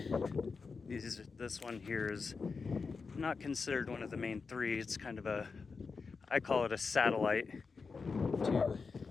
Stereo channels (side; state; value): right; quieter; 4.8 dB